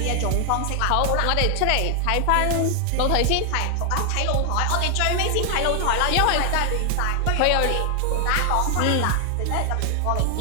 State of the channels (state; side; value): different; both; correlation 0.00